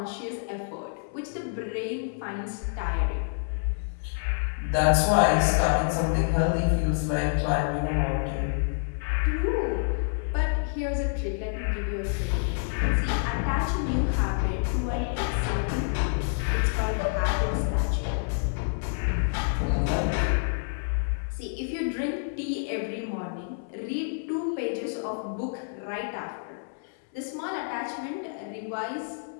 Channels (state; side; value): silent; right; 59 dB below the other